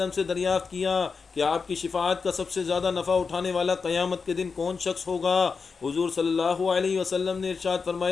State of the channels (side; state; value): right; quieter; 5.1 dB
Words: سے دریافت کیا کہ آپ کی شفاعت کا سب سے زیادہ نفع اٹھانے والا قیامت کے دن کون شخص ہوگا؟ حضور صلی اللہ علیہ وسلم نے ارشاد